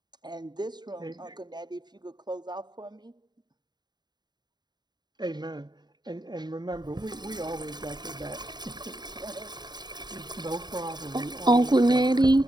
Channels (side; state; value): left; late; 0.20 ms